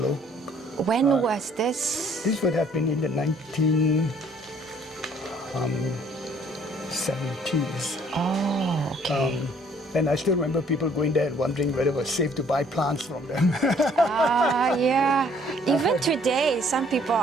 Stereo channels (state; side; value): normal; both; correlation 0.60